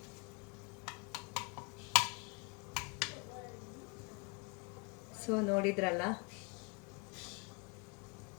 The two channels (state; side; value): quieter; right; 30.9 dB